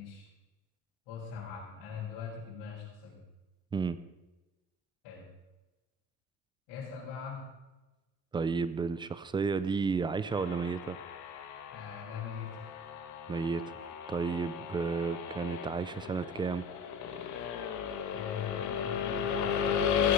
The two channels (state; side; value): normal; both; correlation 0.40